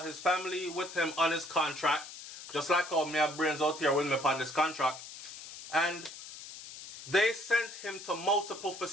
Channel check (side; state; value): left; noise; hiss, 13 dB below the sound